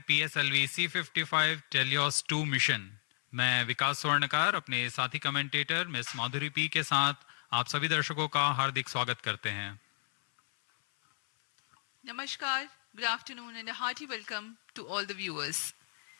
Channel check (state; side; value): silent; right; 56 dB below the other